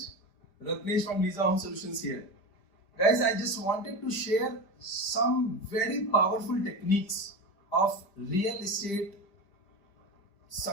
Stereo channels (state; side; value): late; right; 5.0 ms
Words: Ratnesh from Lisa Home Solutions here. Guys, I just wanted to share some very powerful techniques of real estate